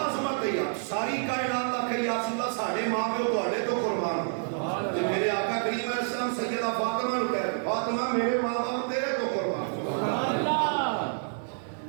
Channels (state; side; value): silent; left; digital silence